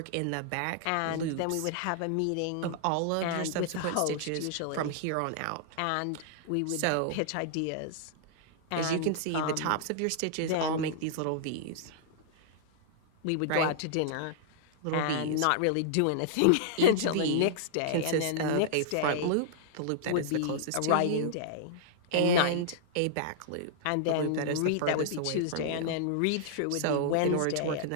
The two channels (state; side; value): different; both; correlation -0.01